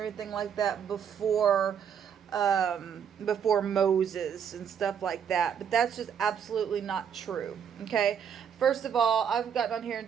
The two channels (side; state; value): left; quieter; 7.9 dB